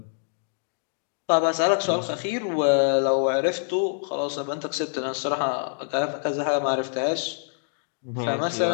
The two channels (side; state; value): right; silent; digital silence